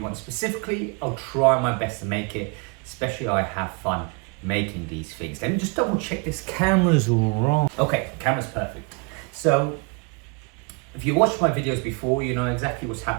specifically, I'll try my best to make it, especially I have fun making these things. Let me just double check this camera's all wrong. Okay, camera's perfect. So if you watched my videos before, you know exactly what's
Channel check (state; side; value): quieter; left; 31.1 dB